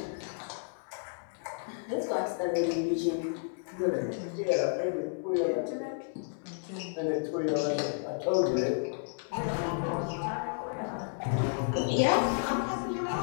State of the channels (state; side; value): silent; right; digital silence